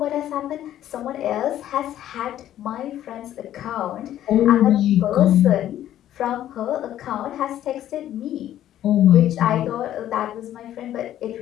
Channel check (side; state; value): right; quieter; 12.1 dB